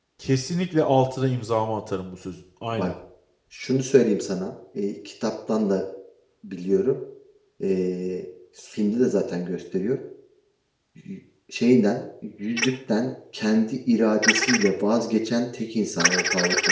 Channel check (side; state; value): both; identical; correlation 1.00